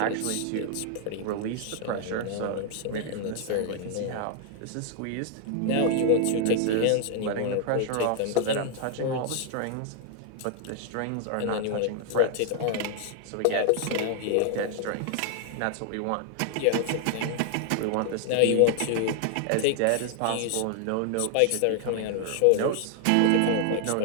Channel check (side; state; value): both; different; correlation 0.00